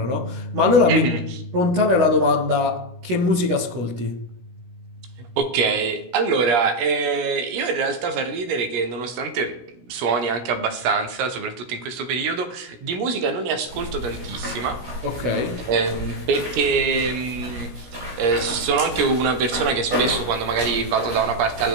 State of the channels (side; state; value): left; late; 16 ms